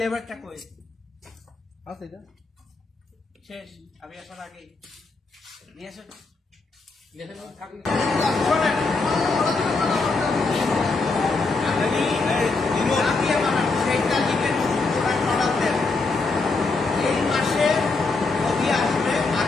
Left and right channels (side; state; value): right; quieter; 3.8 dB